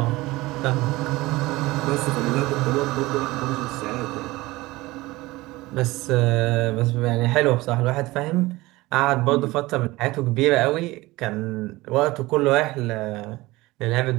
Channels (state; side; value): quieter; left; 20.0 dB